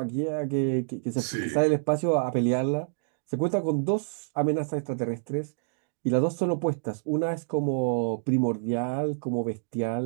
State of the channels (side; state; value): left; silent; digital silence